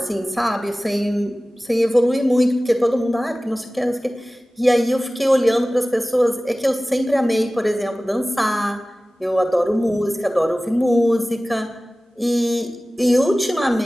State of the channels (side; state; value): both; normal; correlation 0.97